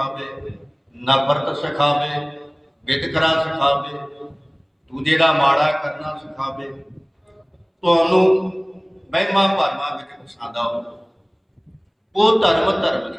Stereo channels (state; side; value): identical; both; correlation 1.00